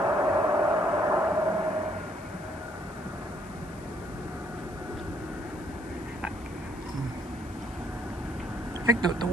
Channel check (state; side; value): noise; left; hiss, 22 dB below the sound